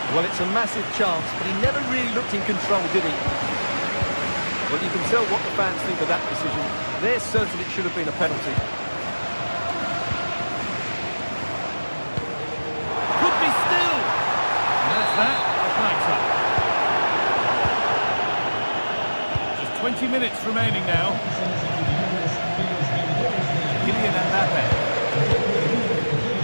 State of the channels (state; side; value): inverted; both; correlation -1.00